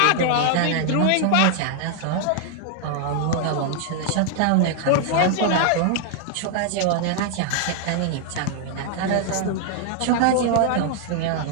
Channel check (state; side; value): different; both; correlation 0.00